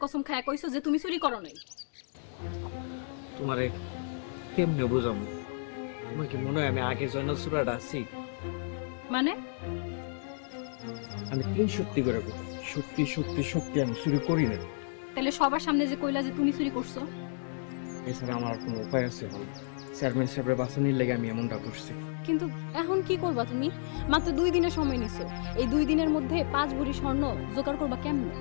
কসম খায়া কইছো যে তুমি চুরি করো নাই। তোমারে কেমনে বুঝামু? তোমার কি মনে হয় আমি আগে জয়নাল সুরাটা আছি? মানে আমি 3 সত্যি করে কই, সত্যি সত্যি সত্যি আমি চুরি করি না। তাহলে সবার সামনে যে কইলা যে তুমি চুরি করছো? এছাড়া আমার আর কোনো উপায় আছে বল? চেয়ারম্যান সাহেবের বাঁচানির লেগে আমি এমনটা করছি। কিন্তু এখন কি করবা তুমি? মাত্র 2 দিনের সময় নিছো। এই 2 দিনের মধ্যে 5 ভরি স্বর্ণ জোগাড় করবা কেমনে?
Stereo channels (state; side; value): silent; right; digital silence